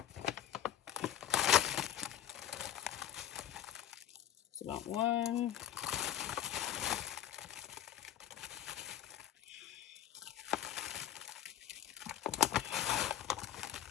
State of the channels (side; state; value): right; quieter; 11.0 dB